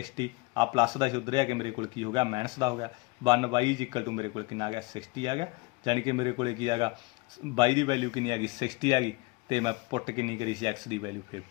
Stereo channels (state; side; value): quieter; right; 25.0 dB